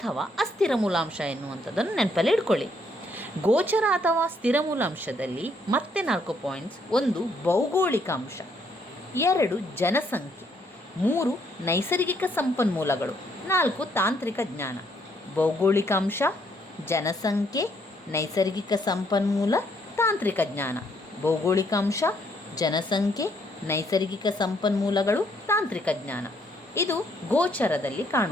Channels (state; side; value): normal; both; correlation 0.70